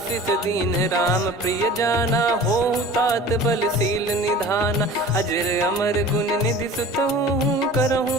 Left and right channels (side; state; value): both; normal; correlation 0.41